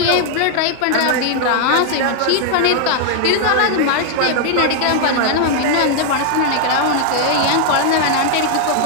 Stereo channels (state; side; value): different; both; correlation 0.00